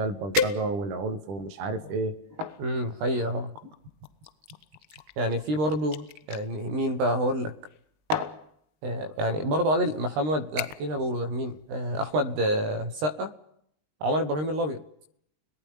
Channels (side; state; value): left; late; 19 ms